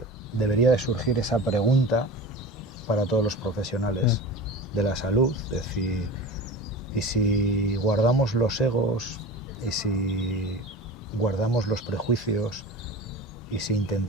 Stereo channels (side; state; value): both; normal; correlation 0.33